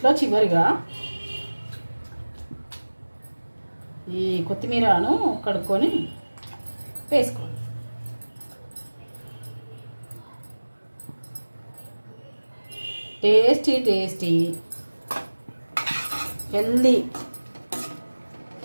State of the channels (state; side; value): inverted; both; correlation -1.00